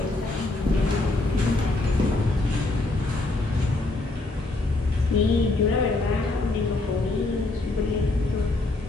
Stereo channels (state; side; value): quieter; right; 3.0 dB